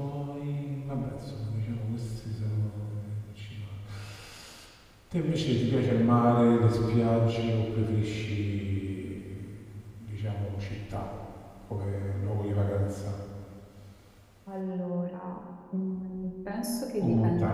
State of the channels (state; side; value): identical; both; correlation 1.00